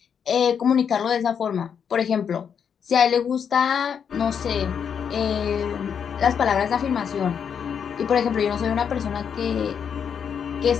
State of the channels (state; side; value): quieter; right; 7.4 dB